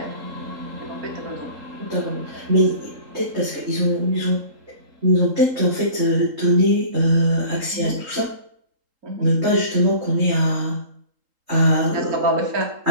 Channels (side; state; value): left; late; 3.8 ms